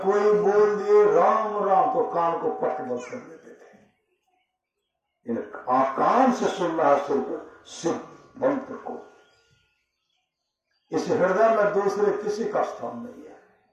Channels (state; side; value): identical; both; correlation 1.00